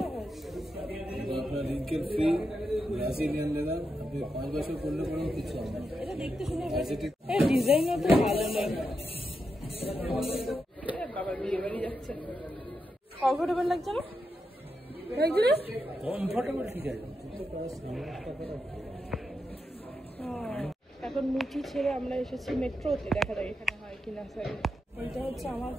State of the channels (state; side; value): normal; both; correlation 0.86